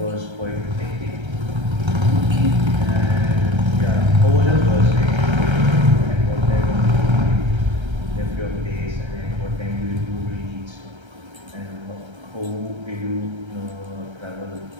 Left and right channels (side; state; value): left; late; 1.3 ms